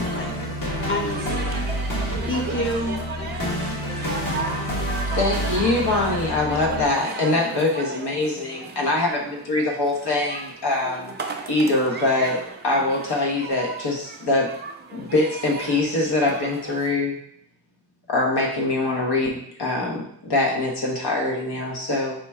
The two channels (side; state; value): both; normal; correlation 0.16